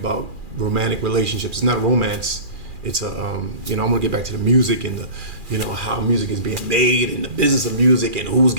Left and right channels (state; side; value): late; left; 2.4 ms